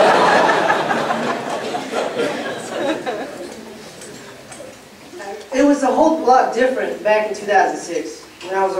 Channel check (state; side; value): identical; both; correlation 1.00